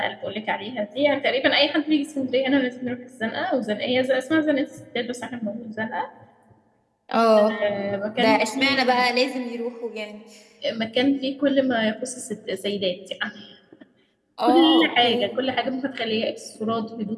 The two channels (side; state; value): both; identical; correlation 1.00